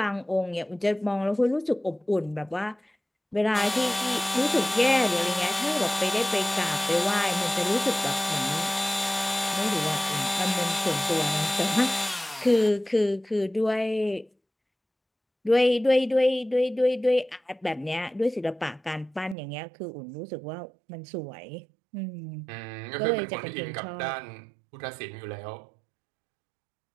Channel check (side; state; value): left; drops out; at 19.4 s